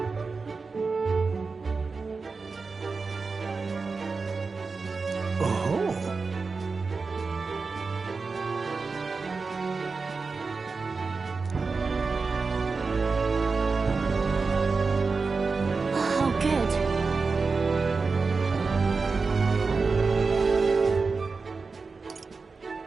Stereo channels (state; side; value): quieter; left; 4.4 dB